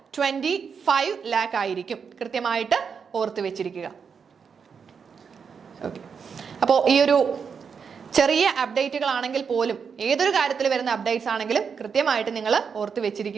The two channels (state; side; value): quieter; left; 6.3 dB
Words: 25 lakh ആയിരിക്കും. കൃത്യമായിട്ട് ഓർത്ത് വെച്ചിരിക്കുക. ഓക്കെ, അപ്പോൾ ഈ ഒരു ചെറിയ അപ്ഡേറ്റുകളാണെങ്കിൽ പോലും ഏതൊരു കാര്യത്തിൽ വരുന്ന അപ്ഡേറ്റ്സ് ആണെങ്കിലും കൃത്യമായിട്ട് നിങ്ങൾ ഓർത്ത്